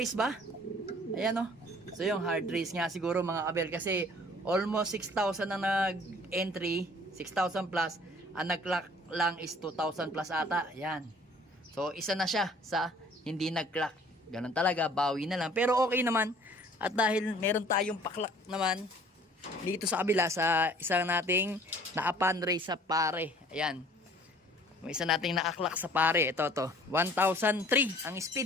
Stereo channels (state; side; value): normal; both; correlation 0.54